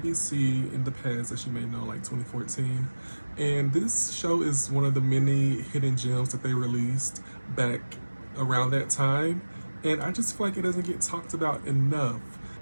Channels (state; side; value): inverted; both; correlation -1.00